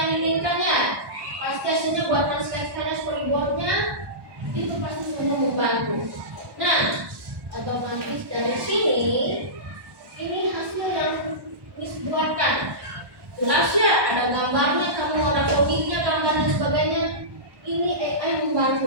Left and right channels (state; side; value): late; left; 1.1 ms